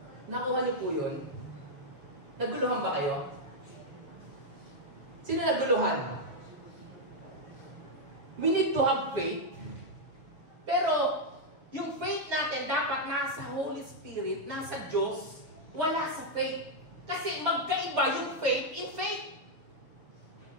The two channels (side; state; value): left; late; 6.8 ms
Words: Nakuha niyo po yun? Naguluhan ba kayo? Sino naguluhan? We need to have faith, pero yung faith natin dapat nasa Holy Spirit, nasa Diyos, wala sa faith. Kasi magkaiba yung faith in faith.